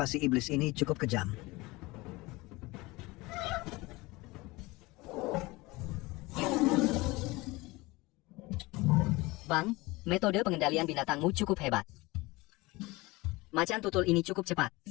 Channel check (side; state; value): right; quieter; 22.1 dB